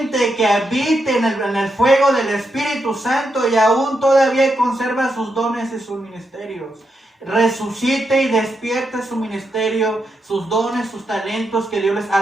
que habite en el fuego del Espíritu Santo y aún todavía conserva sus dones y sus ministerios. Resucite y despierte su ministerio, sus dones, sus talentos que Dios les ha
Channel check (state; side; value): normal; both; correlation 0.83